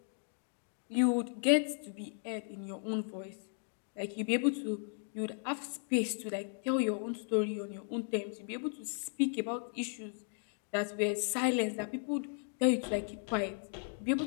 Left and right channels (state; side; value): silent; right; 54 dB below the other